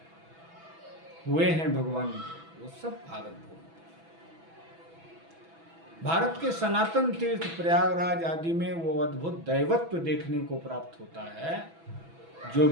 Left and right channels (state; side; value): late; left; 6.1 ms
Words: हुए हैं भगवान के, वो सब भारत भूमि। भारत के सनातन तीर्थ प्रयागराज आदि में वो अद्भुत दैवत्व देखने को प्राप्त होता है जो